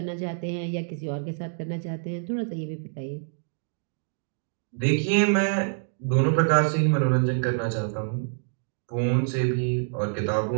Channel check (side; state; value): left; silent; digital silence